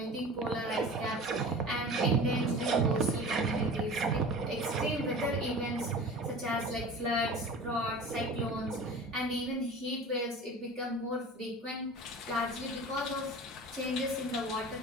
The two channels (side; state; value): both; normal; correlation 0.38